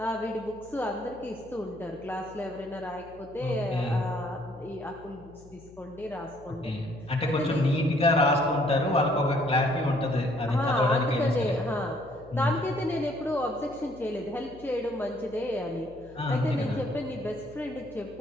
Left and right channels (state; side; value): noise; left; hum, 22 dB below the sound